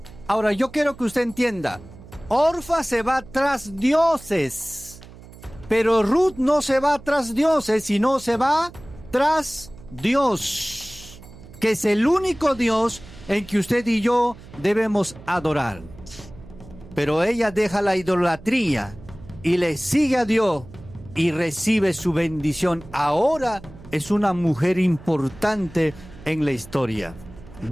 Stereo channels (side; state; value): right; noise; hum, 19 dB below the sound